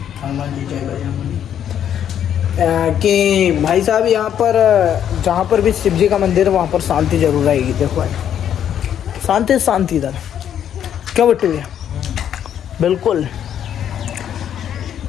हनुमान जी जय बजरंगबली कि भाई साहब यहाँ पर जहाँ पर भी शिव जी का मंदिर है वहाँ पर शांति जरूर रहेगी। देखो भाई, शांति इधर क्यों बट्टी भैया? बिल्कुल।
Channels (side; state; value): right; quieter; 9.6 dB